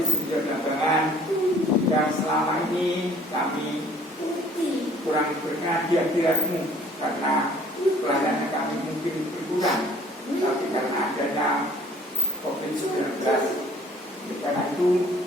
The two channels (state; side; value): normal; both; correlation 0.56